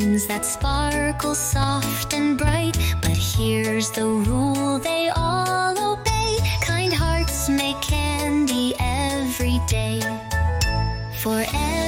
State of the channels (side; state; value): both; identical; correlation 1.00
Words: that sparkle soft and bright. But here's the rule they all obey: kind hearts make candy every day. For